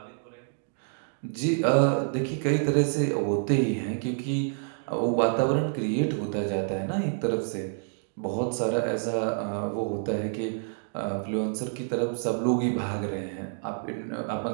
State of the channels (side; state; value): left; silent; digital silence